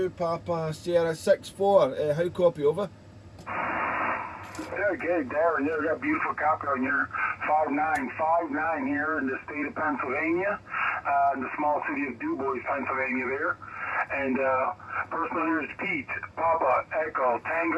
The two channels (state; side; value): identical; both; correlation 1.00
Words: Papa Sierra 6-4. How copy over? Yeah, okay, Darren, you got a beautiful copy on your 5959 here in the state of Pennsylvania, in the small city of DuBois, Pennsylvania there. And personal here is Pete, Papa, Echo,